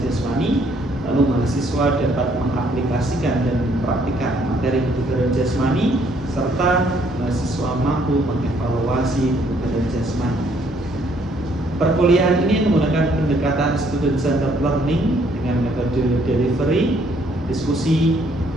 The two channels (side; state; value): both; normal; correlation 0.66